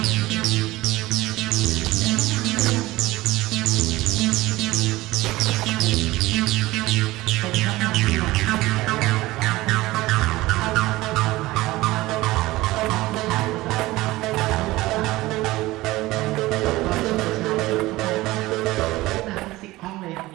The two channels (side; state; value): left; quieter; 18.7 dB